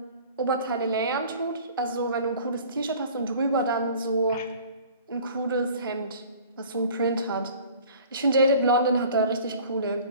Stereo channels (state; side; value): inverted; both; correlation -0.47